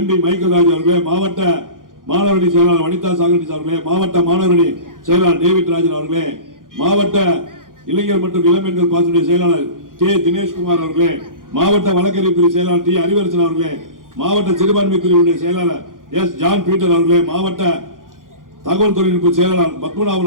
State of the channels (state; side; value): late; left; 0.90 ms